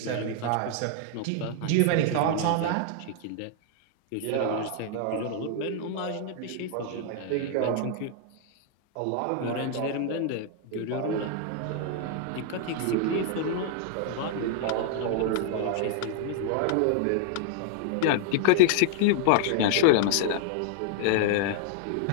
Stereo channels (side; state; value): both; different; correlation -0.01